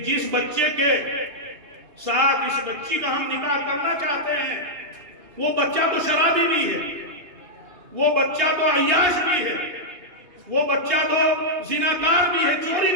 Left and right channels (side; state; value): left; late; 2.7 ms